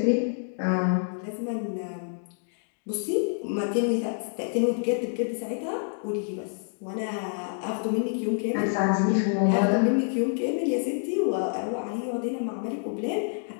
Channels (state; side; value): silent; right; digital silence